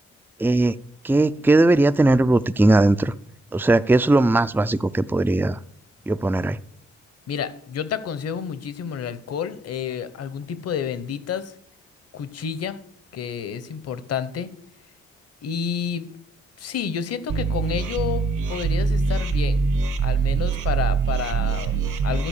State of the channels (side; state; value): both; normal; correlation 0.78